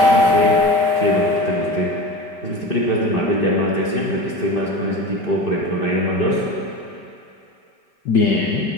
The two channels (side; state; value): right; late; 5.1 ms